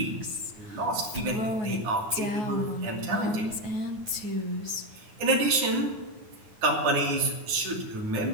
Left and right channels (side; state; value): left; late; 9.4 ms